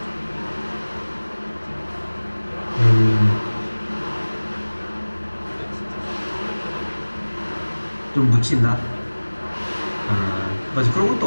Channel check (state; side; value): inverted; both; correlation -1.00